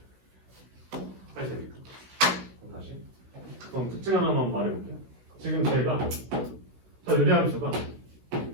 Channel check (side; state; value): left; late; 16 ms